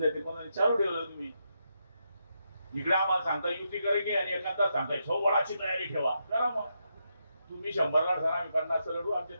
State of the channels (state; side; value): inverted; both; correlation -0.82